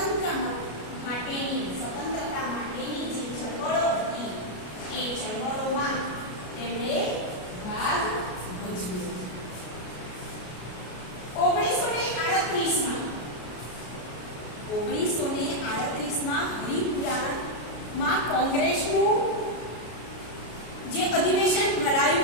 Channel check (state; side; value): late; right; 33 ms